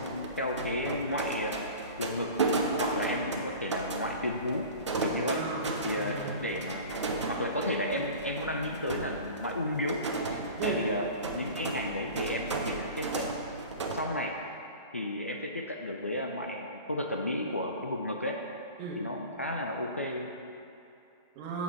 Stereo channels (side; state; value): both; inverted; correlation -0.37